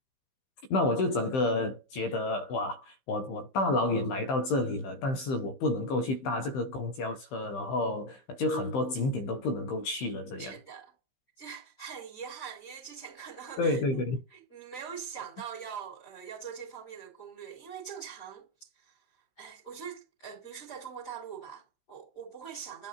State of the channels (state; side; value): late; right; 15 ms